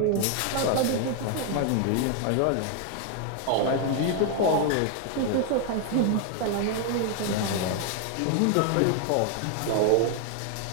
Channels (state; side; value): different; both; correlation 0.00